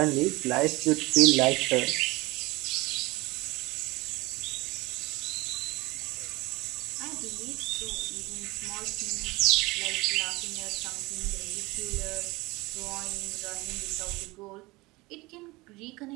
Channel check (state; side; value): quieter; left; 22.3 dB